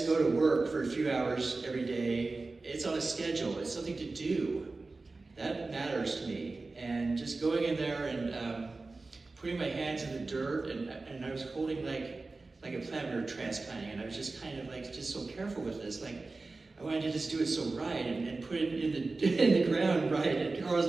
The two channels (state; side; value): quieter; left; 3.6 dB